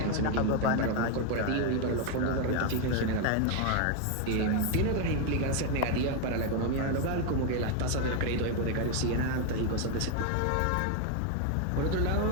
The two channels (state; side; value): different; both; correlation 0.01